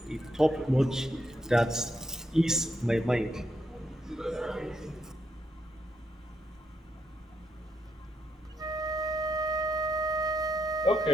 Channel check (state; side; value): normal; both; correlation 0.79